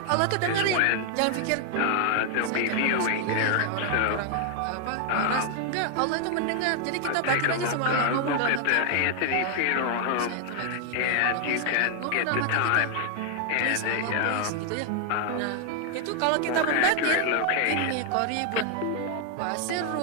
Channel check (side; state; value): both; different; correlation 0.00